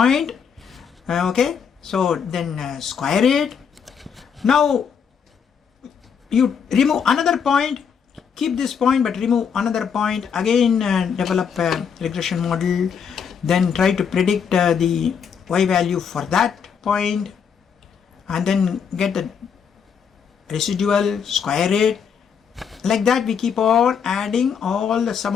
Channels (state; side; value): quieter; right; 7.0 dB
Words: Okay, so then square it. Now you remove another point, keep this point but remove another point, again develop a regression model, then try to predict the y value for that point, and then get the residual, square it. Like that we keep on adding all the sum